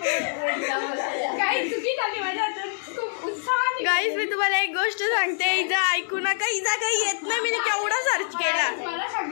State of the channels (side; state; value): right; silent; digital silence